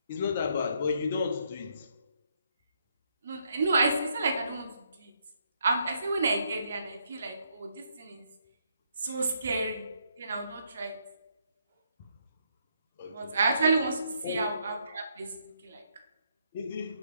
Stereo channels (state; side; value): inverted; both; correlation -0.73